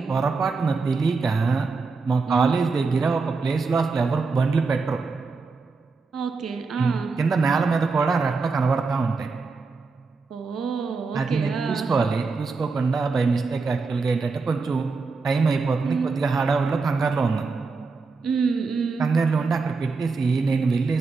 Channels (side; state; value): left; quieter; 4.4 dB